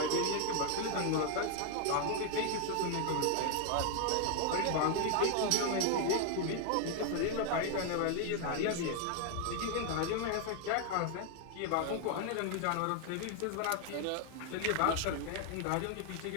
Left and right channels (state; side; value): different; both; correlation 0.00